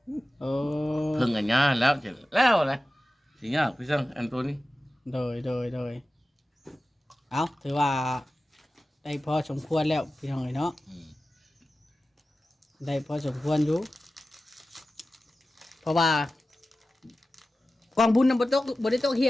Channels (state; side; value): normal; both; correlation 0.95